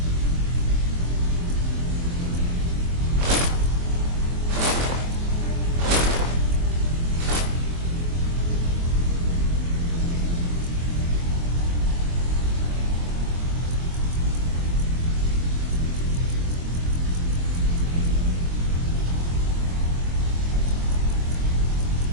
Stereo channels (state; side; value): late; left; 23 ms